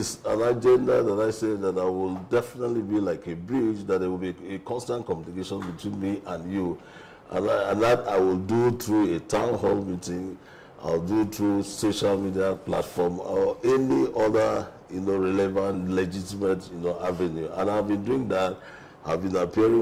an agenda that I say that I will definitely be like a bridge, that there will be a constant communication between me and you. And that I will do through a town hall meeting, I'll do through social media platform or any other, relevant, legitimate, avenue. And I've been doing that. I've been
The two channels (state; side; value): identical; both; correlation 1.00